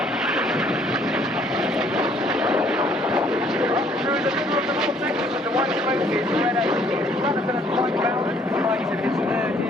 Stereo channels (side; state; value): both; normal; correlation 0.62